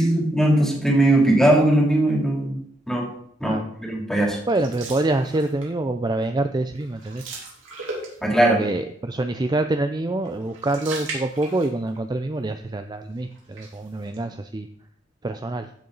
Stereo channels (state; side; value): normal; both; correlation 0.76